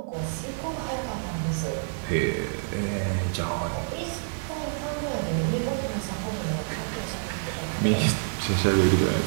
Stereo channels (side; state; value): left; silent; digital silence